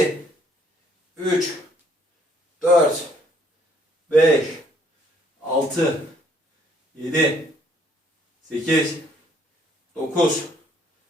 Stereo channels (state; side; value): normal; both; correlation 0.64